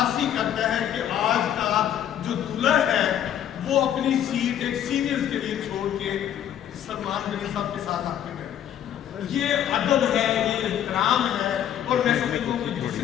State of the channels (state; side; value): quieter; right; 10.4 dB